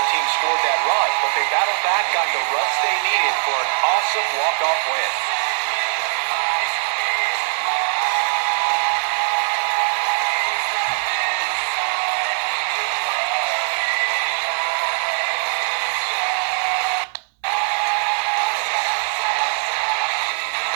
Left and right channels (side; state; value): left; silent; 65 dB below the other